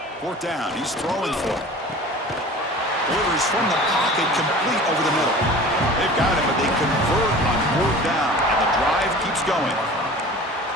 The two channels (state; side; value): normal; both; correlation 0.41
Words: 4th down. He's throwing for it. Delivers from the pocket, complete over the middle. They've got it, but they convert on 4th down, and the drive keeps going.